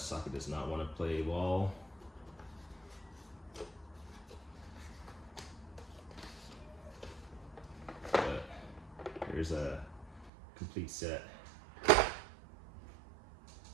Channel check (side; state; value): left; drops out; at 10.3 s